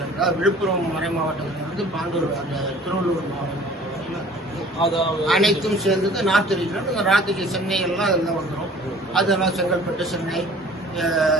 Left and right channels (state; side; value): normal; both; correlation 0.49